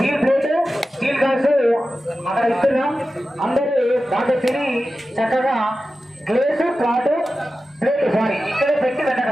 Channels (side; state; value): both; normal; correlation 0.93